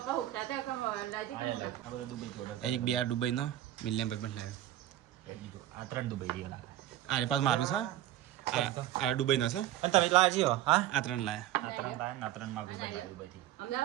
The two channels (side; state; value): left; quieter; 13.2 dB